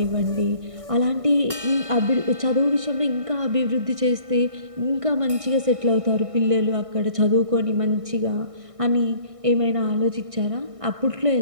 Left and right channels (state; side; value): late; left; 1.6 ms